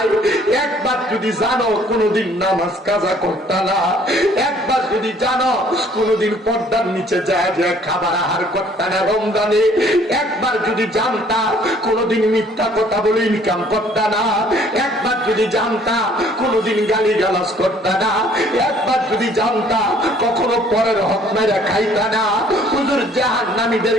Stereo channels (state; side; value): normal; both; correlation 0.59